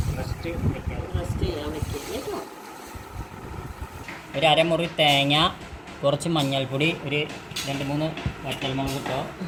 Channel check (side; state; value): both; identical; correlation 1.00